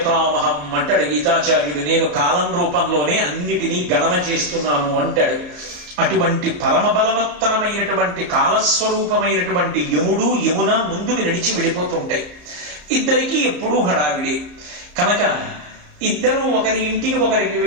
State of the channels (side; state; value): left; late; 34 ms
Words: అంటాడు గీతాచార్యుడు. నేను కాలం రూపంలోనే అన్నిటినీ గణన చేస్తున్నాను అంటాడు. అటువంటి పరమ బలవత్తరమైనటువంటి కాలస్వరూపమైనటువంటి యముడు యమున ముందుకు నడిచి వెళ్ళిపోతుంటాయి. ఇద్దరికీ ఎప్పుడూ హడావిడే కనుక ఇద్దరూ ఒకరి ఇంటికి ఒకరికి